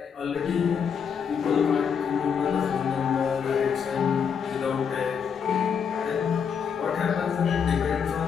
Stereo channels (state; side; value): quieter; right; 6.9 dB